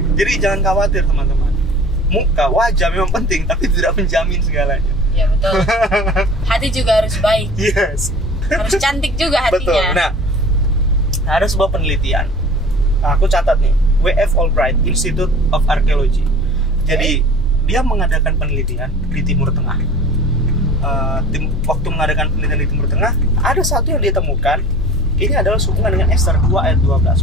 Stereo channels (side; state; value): both; normal; correlation 0.43